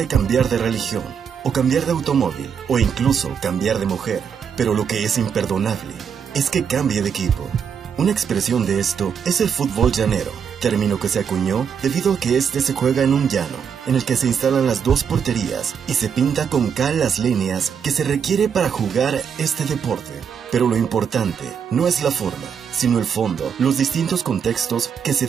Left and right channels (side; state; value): left; quieter; 7.2 dB